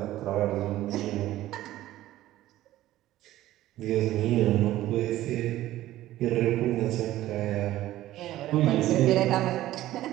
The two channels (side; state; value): left; quieter; 14.8 dB